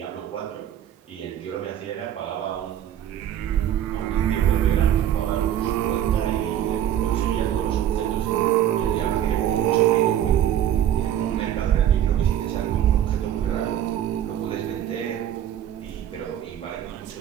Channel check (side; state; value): left; quieter; 10.9 dB